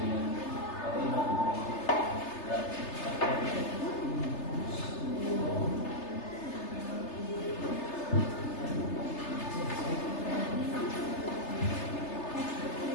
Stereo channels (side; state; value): right; late; 3.3 ms